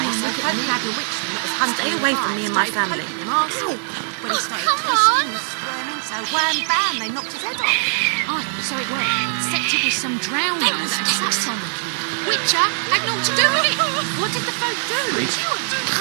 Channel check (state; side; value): silent; left; 56 dB below the other